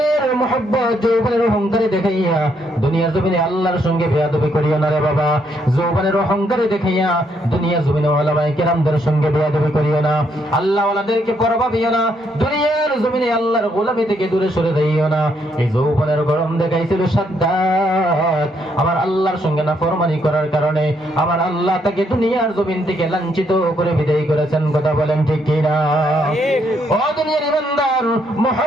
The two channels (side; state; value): both; normal; correlation 0.73